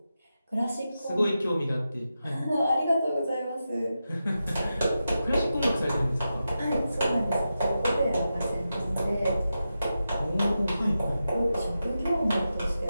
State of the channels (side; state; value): both; inverted; correlation -0.90